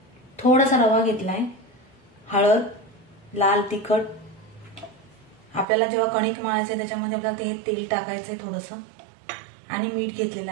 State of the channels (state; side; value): drops out; left; at 5.7 s